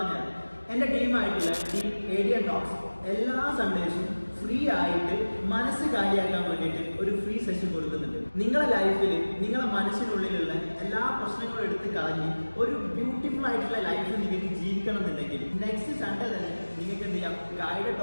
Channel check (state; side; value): inverted; both; correlation -1.00